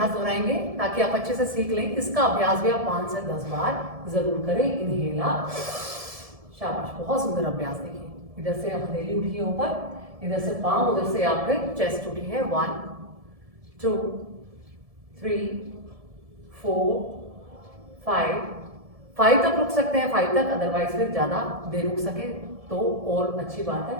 दोहराएंगे ताकि आप अच्छे से सीख लें। इसका अभ्यास भी आप 5 से 10 बार जरूर करें। इनहेला, शाबाश, बहुत सुंदर अभ्यास। देखिए इधर से आप हथेली उठी है ऊपर, इधर से पांव, उधर से आपके चेस्ट उठी है। 1 2 3 4 5 तक रुक सकते हैं, 5 तक, अदरवाइज फिर ज्यादा देर रुक सके तो और अच्छी बात है।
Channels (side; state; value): left; late; 1.7 ms